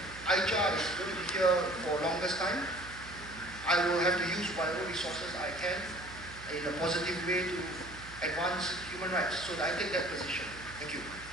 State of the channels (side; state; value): right; noise; hum, 16 dB below the sound